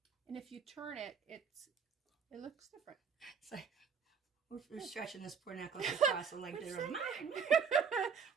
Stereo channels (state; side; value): quieter; left; 6.4 dB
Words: And if you turn it, it looks different. It's like we're stretching this poor necklace across the length of the room.